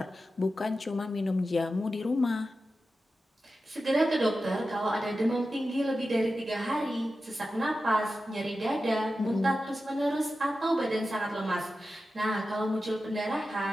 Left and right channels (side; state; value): both; normal; correlation 0.92